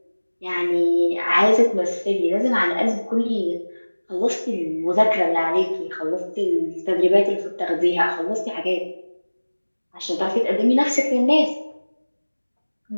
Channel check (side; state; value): both; inverted; correlation -1.00